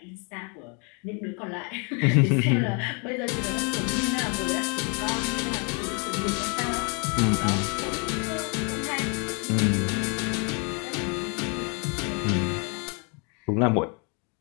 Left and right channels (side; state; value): right; quieter; 35.1 dB